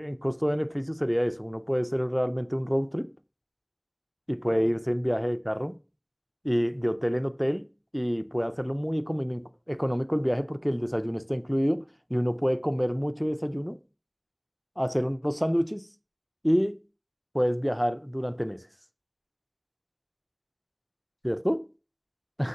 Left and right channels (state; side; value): identical; both; correlation 1.00